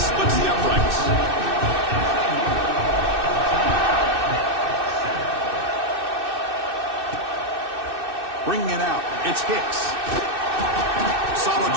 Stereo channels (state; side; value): late; left; 2.6 ms